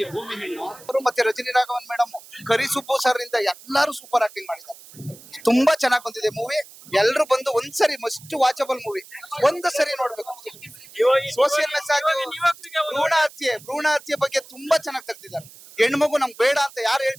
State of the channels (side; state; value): right; noise; hiss, 20 dB below the sound